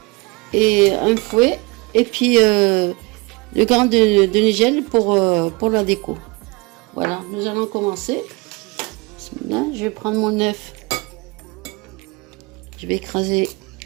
et un fouet, et puis le grain de nigel pour la déco. Voilà, nous allons commencer. Là, je vais prendre mon œuf. Je vais écraser.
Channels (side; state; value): left; quieter; 26.2 dB